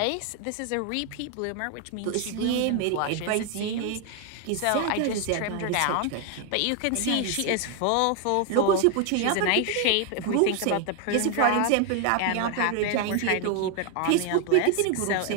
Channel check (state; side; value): different; both; correlation 0.01